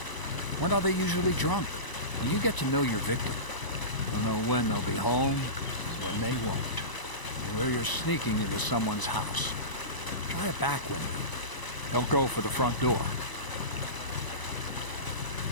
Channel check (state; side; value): late; right; 1.0 ms